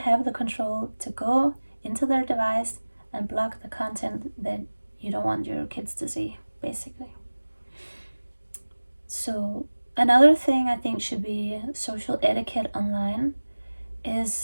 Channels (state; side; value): inverted; both; correlation -1.00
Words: the control to go into their device and block the content that you don't want your kids to see, basically. So another thing I think should be social etiquette online